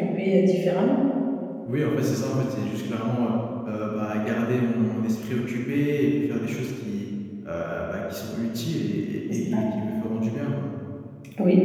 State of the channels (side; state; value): both; identical; correlation 1.00